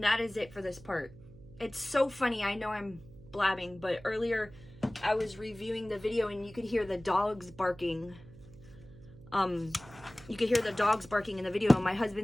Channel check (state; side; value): noise; right; hum, 20 dB below the sound